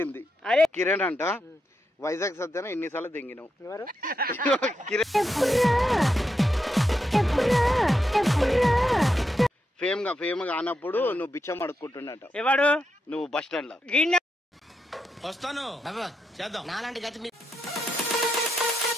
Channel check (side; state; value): both; normal; correlation 0.84